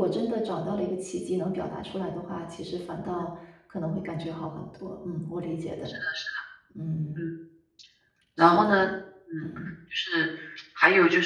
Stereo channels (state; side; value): identical; both; correlation 1.00